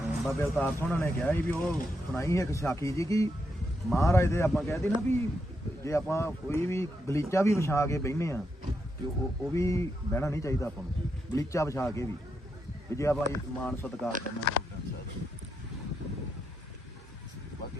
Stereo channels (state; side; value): normal; both; correlation 0.82